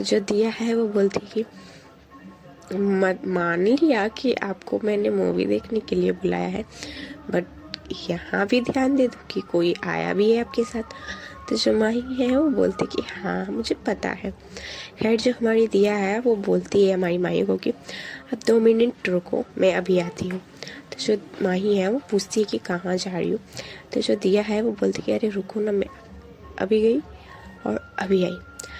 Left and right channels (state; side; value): identical; both; correlation 1.00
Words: जो दिया है वो बोलती है कि मान लिया कि आपको मैंने मूवी देखने के लिए बुलाया है, बट यहाँ भी ध्यान दे दो कि कोई आया भी है आपके साथ। तो जो माही है वो बोलती कि हाँ मुझे पता है। खैर जो हमारी दिया है वो बोलती है हमारी माही को कि अब 2 मिनट रुको, मैं अभी आती हूँ। तो जो माही है वो पूछती है कि कहाँ जा रही हो। तो जो दिया है वो बोलती कि अरे रुको ना, मैं अभी गई और अभी आई।